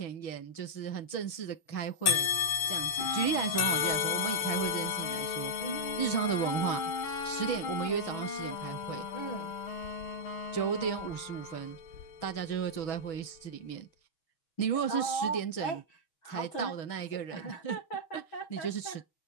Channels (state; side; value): late; right; 6.4 ms